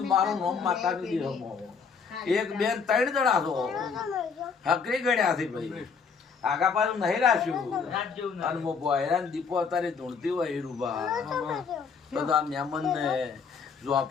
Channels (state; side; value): quieter; right; 5.8 dB